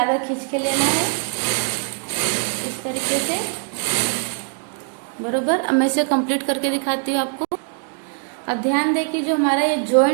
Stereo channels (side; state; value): left; quieter; 39.3 dB